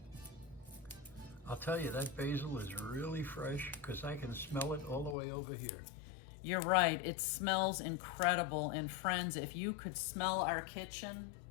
I'll tell you, that basil is really fresh because I can smell it all the way over here. You're right, it smells incredible. And friends, if you could smell our kitchen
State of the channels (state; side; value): drops out; right; at 5.2 s